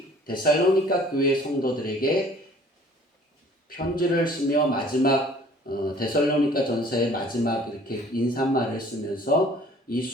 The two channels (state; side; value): normal; both; correlation 0.53